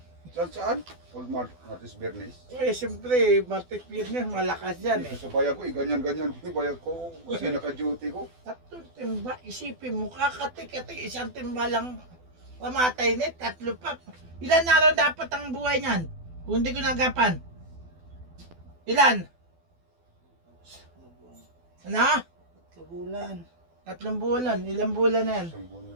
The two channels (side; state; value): left; late; 12 ms